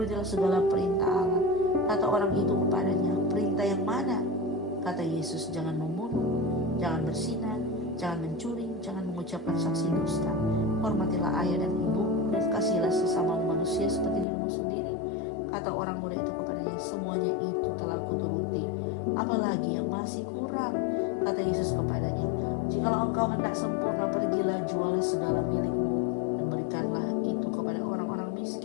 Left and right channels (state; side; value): drops out; right; at 14.2 s